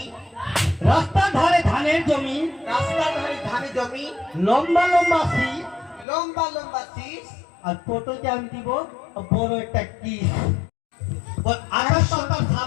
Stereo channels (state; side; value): drops out; right; at 6.1 s